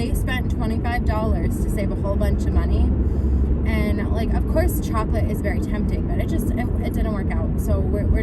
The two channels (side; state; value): both; identical; correlation 1.00